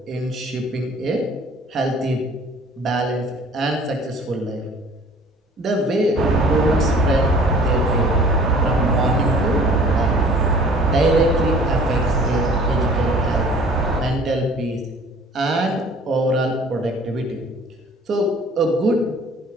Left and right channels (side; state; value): both; normal; correlation 0.51